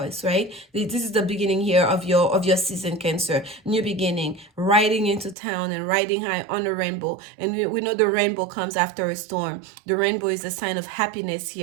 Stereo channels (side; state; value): left; drops out; at 5.4 s